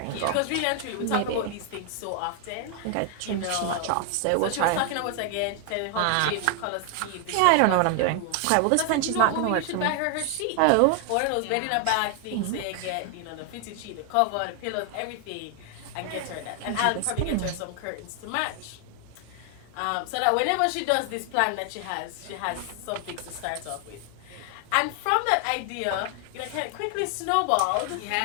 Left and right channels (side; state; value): both; different; correlation 0.00